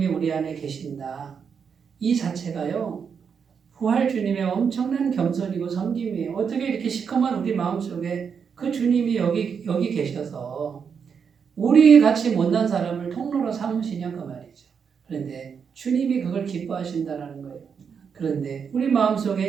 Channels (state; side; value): quieter; left; 6.6 dB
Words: 우리 안에 계신다. 이 자체가요, 부활 주님의 엄청난 겸손이고 섬김이에요. 어떻게 이렇게 시커먼 우리 마음속에 그 주님이 여기 계셔서 우리 같이 못난 사람을 통로로 삼으시냐 그 말이죠. 그런데 주님이 그걸 기뻐하신다는 거예요. 그런데 우리